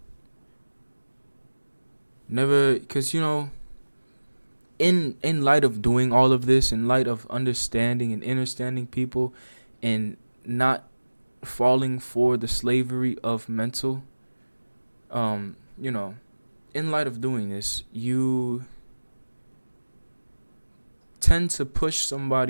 Never, because, in light of doing all of this, in light of understanding and understanding people and not falling for the slavery of mental, in light of doing this, you tend to push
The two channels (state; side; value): inverted; both; correlation -1.00